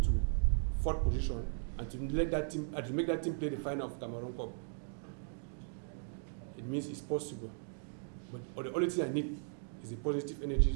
4th position, and to let that team, and to make that team play the final of Cameroon Cup, it means it's possible. But the only thing I need is a positive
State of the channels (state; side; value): silent; left; digital silence